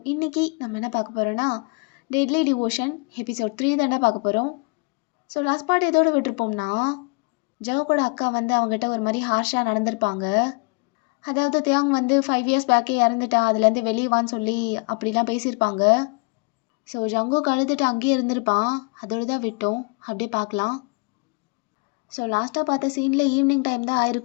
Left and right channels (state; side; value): quieter; right; 32.6 dB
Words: இன்னைக்கு நம்ம என்ன பார்க்க போகிறோன்னா டெட்லி டிவோஷன் எபிசோட் 3 தானே பார்க்க போகிறோம். ஸோ லாஸ்ட் பார்ட் எதோடு விட்டுருப்போம்னா ஜவுக்கோட அக்கா வந்து அவங்ககிட்ட ஒரு மாதிரி ஹார்ஷாக நடந்திருப்பாங்க. அதாவது தியாங் வந்து 5 இயர்ஸ் பேக்கே இறந்துட்டா, அதுலேருந்து வெளியே வான்னு சொல்லி அப்படிலாம் பேசியிருப்பாங்க. ஸோ ஜங்குக்கு அழுதுட்டு அங்கேயே இருந்திருப்பான். அதோடு தான் விட்டோம். அப்படியே பார்க்கலாம். ஸோ லாஸ்ட்டாக பார்த்த சீனில் ஈவினிங் டைம் தான்